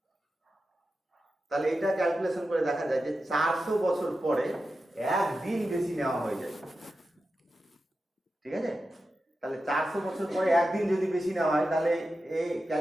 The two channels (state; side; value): normal; both; correlation 0.91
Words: তাহলে এটা ক্যালকুলেশন করে দেখা যায় যে 400 বছর পরে একদিন বেশি নেওয়া হয়ে যায়, ঠিক আছে? তাহলে 400 বছর পরে একদিন যদি বেশি নেওয়া হয়, তাহলে এই